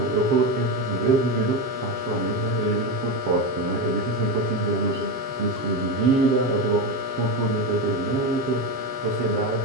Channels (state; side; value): late; left; 7.4 ms